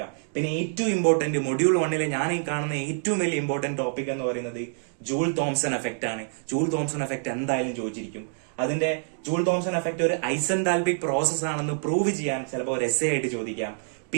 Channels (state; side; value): silent; left; digital silence